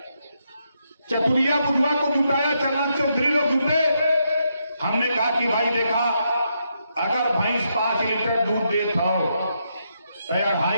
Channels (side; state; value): both; inverted; correlation -0.80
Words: चतुरिया बुधवा को जुटाया, चलन चौधरी लोग जुटे। हमने कहा कि भाई देखा अगर भैंस 5 लीटर दूध देता हो तो